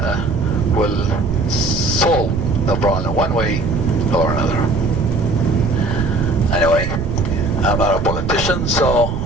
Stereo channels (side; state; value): right; noise; rumble, 4 dB below the sound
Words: will solve the problem one way or another. Anyway, I'm not a politician, so